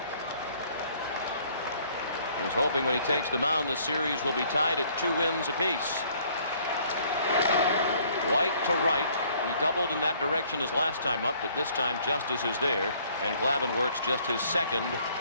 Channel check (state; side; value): inverted; both; correlation -0.61